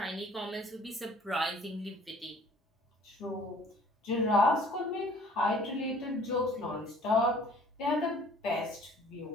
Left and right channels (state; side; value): normal; both; correlation 0.54